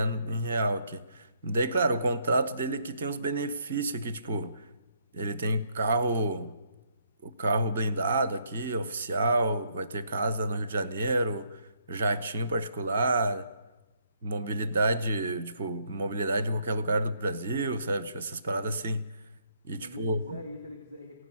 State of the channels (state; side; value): inverted; both; correlation -0.71